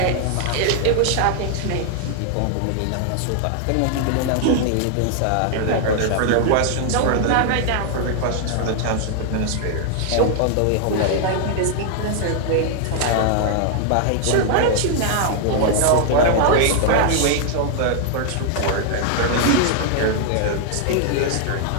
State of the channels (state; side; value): different; both; correlation 0.00